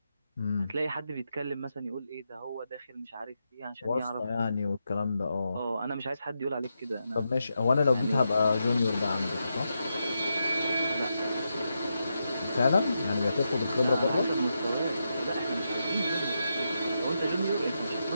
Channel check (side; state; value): both; inverted; correlation -0.85